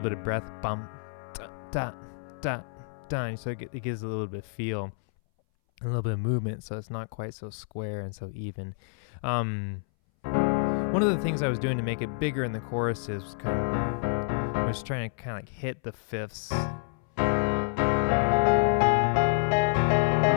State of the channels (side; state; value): right; silent; 59 dB below the other